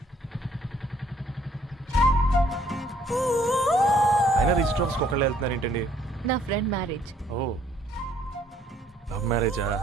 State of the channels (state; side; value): normal; both; correlation 0.64